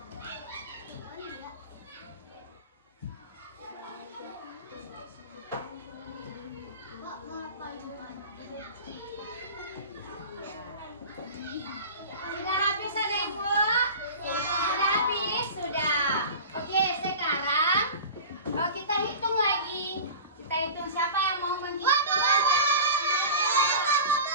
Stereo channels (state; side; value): inverted; both; correlation -0.34